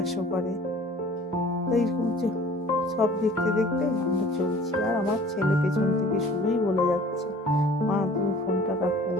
করে। তো এইরকম সব দেখতে আমরা চলছি। আর আমার ছেলে পেছন থেকে শুধুই বলে যাচ্ছে, মা তুমি ফোনটা রাখো,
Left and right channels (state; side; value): normal; both; correlation 0.49